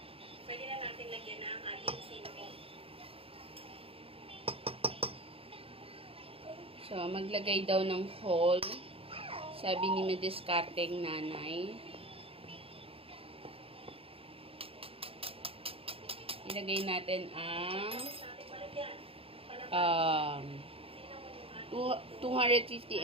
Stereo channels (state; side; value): late; left; 0.27 ms